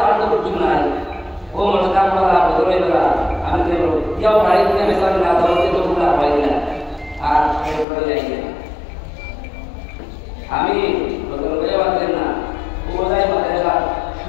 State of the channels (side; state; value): right; drops out; at 7.9 s